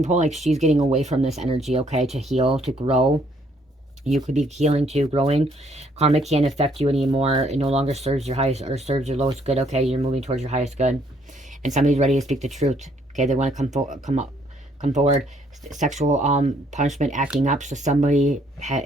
pulling like she's getting away from this energy, okay, to heal, to grow. You could be healing too, growing. Karma can't affect you anymore. It no longer serves your highest or serves your lowest good, okay? You're moving towards your highest good. And somebody's ready to speak the truth, okay? They want to come forward. Sexual punishment, acting up. So somebody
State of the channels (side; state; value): both; normal; correlation 0.67